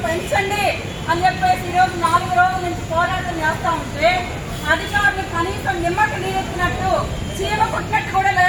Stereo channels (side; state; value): both; identical; correlation 1.00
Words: పెంచండి అని చెప్పేసి ఈరోజు 4 రోజుల నుంచి పోరాటం చేస్తా ఉంటే అధికారులు కనీసం నిమ్మకి నీరెత్తినట్టు చీమ పుట్టినట్టు కూడా